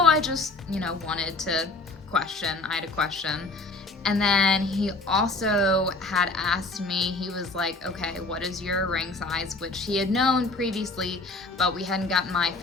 I just, wanted to question. I had a question. And then he also had asked me, he was like, okay, what is your ring size? Which he had known previously, but we hadn't gotten my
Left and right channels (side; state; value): right; quieter; 3.3 dB